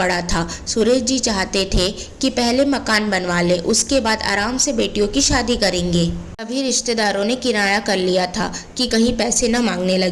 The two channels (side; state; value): both; identical; correlation 1.00